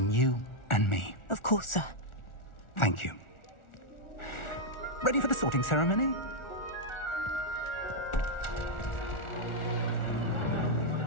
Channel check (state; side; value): late; right; 1.4 ms